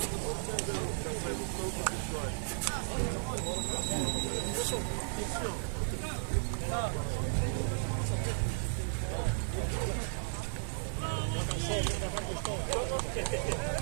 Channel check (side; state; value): left; silent; 55 dB below the other